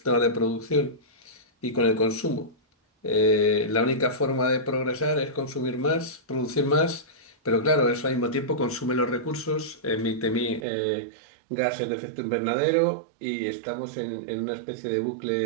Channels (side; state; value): left; drops out; at 10.7 s